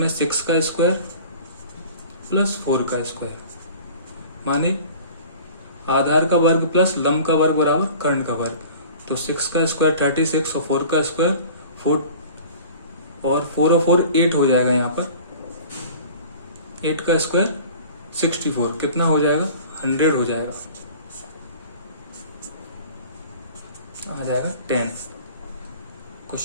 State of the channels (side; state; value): both; inverted; correlation -0.44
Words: 6 का स्क्वायर प्लस 4 का स्क्वायर, माने आधार का वर्ग प्लस लंब का वर्ग बराबर कर्ण का वर्ग। तो 6 का स्क्वायर 36 और 4 का स्क्वायर 4 और 4 और 4 8 हो जाएगा। यहाँ पर 8 का स्क्वायर 64, कितना हो जाएगा? 100 हो जाएगा, आ जाएगा 10।